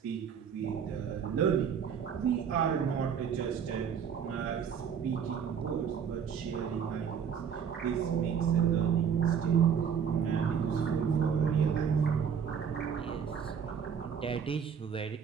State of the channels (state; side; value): quieter; left; 7.5 dB